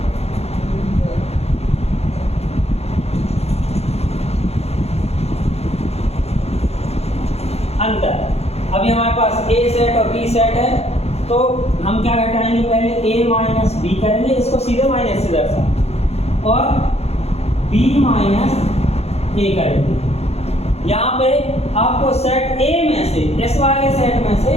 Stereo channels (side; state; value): right; late; 0.30 ms